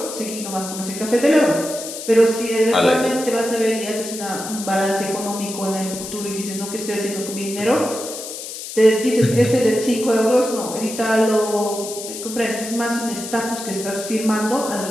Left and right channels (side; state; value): left; noise; hiss, 9 dB below the sound